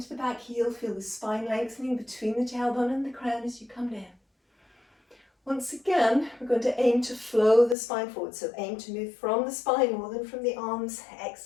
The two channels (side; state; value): right; drops out; at 7.8 s